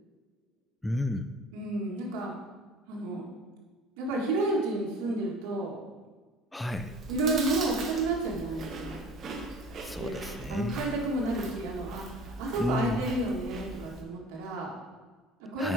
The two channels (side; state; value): both; normal; correlation 0.43